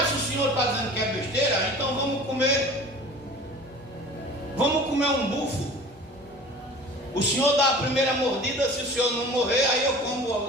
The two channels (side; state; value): both; normal; correlation 0.42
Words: se o senhor está dizendo que é besteira, então vamos comer um bufo. O senhor dá a primeira mordida, se o senhor não morrer, aí eu como